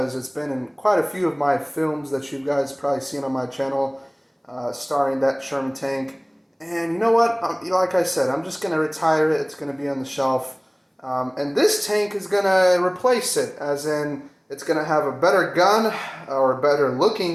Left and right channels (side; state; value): both; identical; correlation 1.00